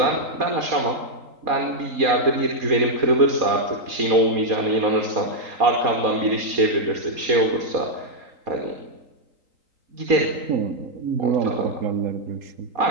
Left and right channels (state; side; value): late; left; 3.8 ms